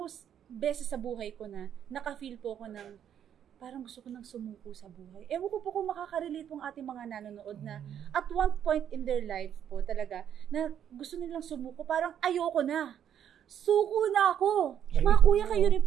beses sa buhay ko na naka-feel po ko ng parang gusto ko nang sumuko sa buhay. Ewan ko po kung makaka-relate pong ating mga nanonood na at one point in their life po talaga na gusto nilang sumuko, parang ayoko na. Suko na ako. Mga kuya, kayo rin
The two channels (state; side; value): quieter; left; 9.4 dB